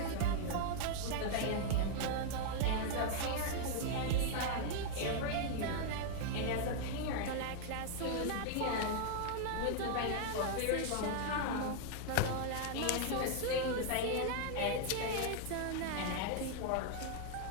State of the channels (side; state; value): both; different; correlation 0.00